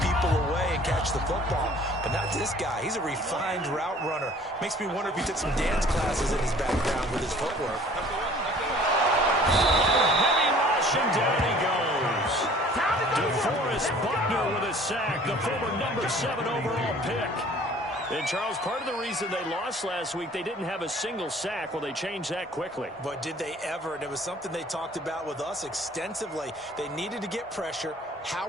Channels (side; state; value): both; normal; correlation 0.51